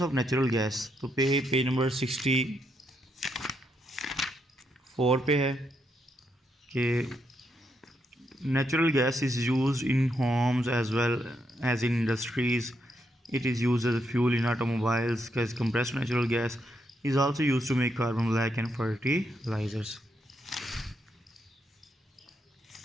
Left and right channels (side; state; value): both; normal; correlation 0.79